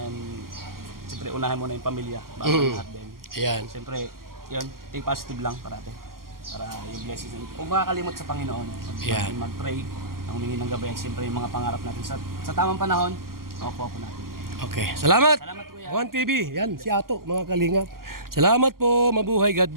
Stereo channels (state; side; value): late; left; 0.92 ms